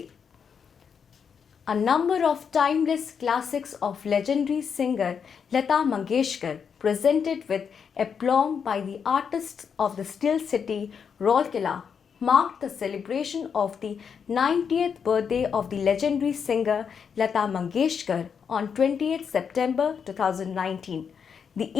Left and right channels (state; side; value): quieter; right; 6.8 dB